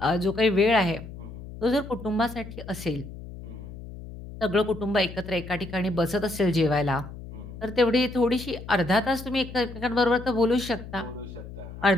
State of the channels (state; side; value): noise; left; hum, 13 dB below the sound